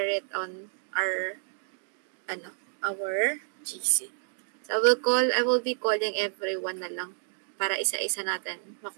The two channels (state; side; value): silent; left; digital silence